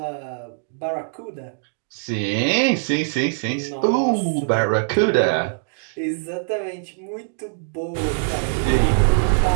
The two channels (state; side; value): silent; left; digital silence